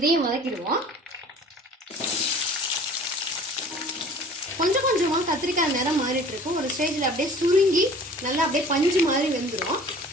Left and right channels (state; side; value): normal; both; correlation 0.47